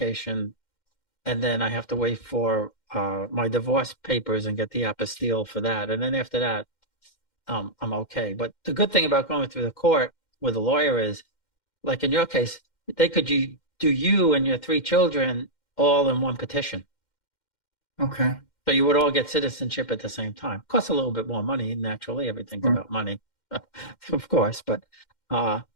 and then I have to wait for my divorce papers and get the apostille for that, and then after that, I'm okay. But the good thing about going through the court with a lawyer is, like in your case, they could do you and your three children all in one petition. Okay. So you would all get citizenship at the same time. Costs a little bit more money, naturally. Everything's Sure. about money, of course. But uh,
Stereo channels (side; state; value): right; late; 2.1 ms